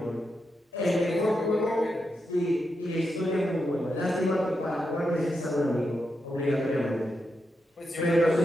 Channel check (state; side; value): normal; both; correlation 0.85